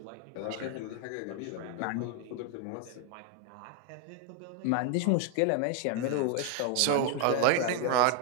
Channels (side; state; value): both; different; correlation 0.01